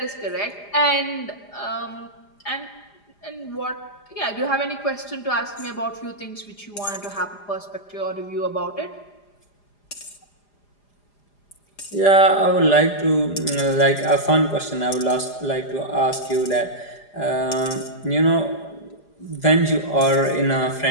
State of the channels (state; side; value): late; right; 4.9 ms